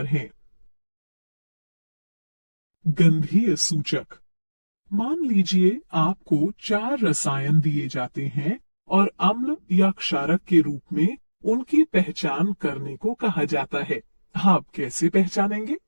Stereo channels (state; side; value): inverted; both; correlation -1.00